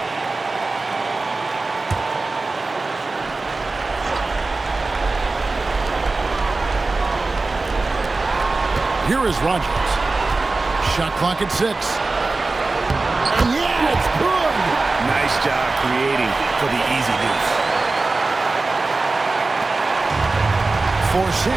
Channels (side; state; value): left; quieter; 3.5 dB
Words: Here is Rogers. Shot clock at 6. And yeah, it's good. Nice job creating for the easy deuce. For